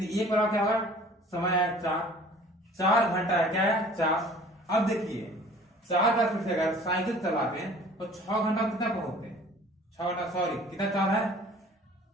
ये पूरा क्या होगा समय है 4 घंटा है क्या है 4। अब देखिए 4 का स्पीड से अगर साइकिल चलाते हैं तो 6 घंटा कितना पहुंचते हैं 6 घंटा सॉरी कितना चाल है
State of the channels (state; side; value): normal; both; correlation 0.49